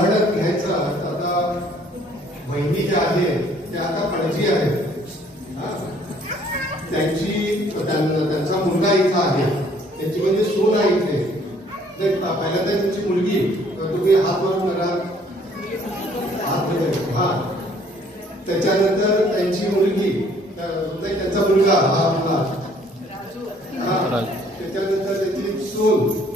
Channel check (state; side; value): normal; both; correlation 0.60